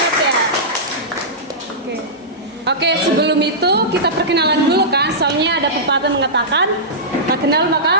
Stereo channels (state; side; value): normal; both; correlation -0.15